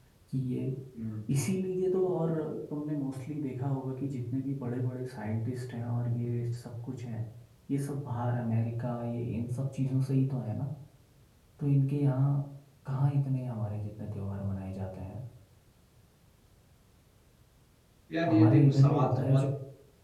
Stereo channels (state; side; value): identical; both; correlation 1.00